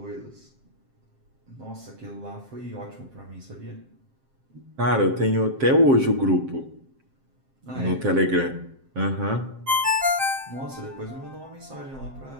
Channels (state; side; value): late; left; 7.6 ms